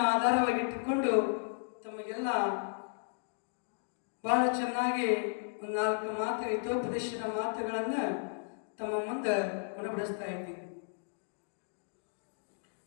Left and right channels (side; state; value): right; silent; digital silence